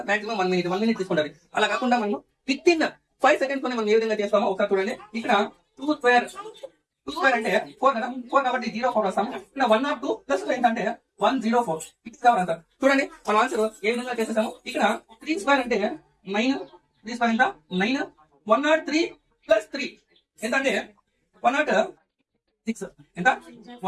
maximum 1 minute తీసుకుంటారు. అలా కాకుండా మనం విత్ ఇన్ 5 సెకండ్స్ లోనే మనం ఏ విధంగా చేస్తామో ఒకసారి చూడండి. ఇక్కడ 2 స్క్వేర్ అంటే 4 కదా, 4 కాబట్టి 04 వస్తాము. ఇక్కడ 102 ప్లస్ 2 ఏంటంటే 104. ఇది కావాలి ఆన్సర్. చూడండి మన ఆన్సర్ ఏ విధంగా చేసేసాము. ఇక్కడ 3 స్క్వేర్ అంటే 9, 3 స్క్వేర్ ఎంత 9, 103 ప్లస్ 3 ఎంత అంటే 106 ఎంత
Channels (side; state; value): both; identical; correlation 1.00